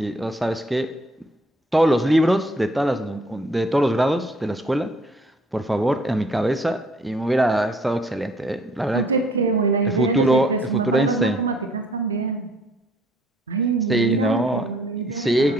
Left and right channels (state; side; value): normal; both; correlation 0.61